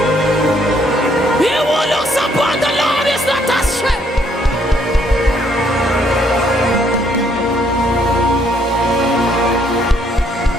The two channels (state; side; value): normal; both; correlation 0.68